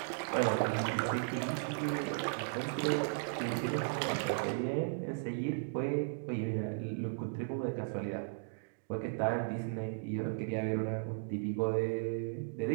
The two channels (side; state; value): left; silent; digital silence